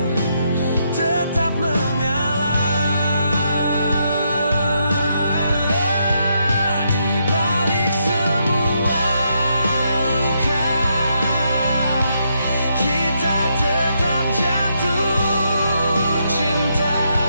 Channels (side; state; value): both; inverted; correlation -0.78